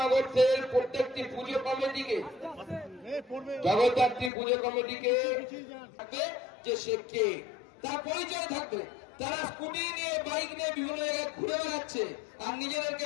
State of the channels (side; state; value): right; drops out; at 4.3 s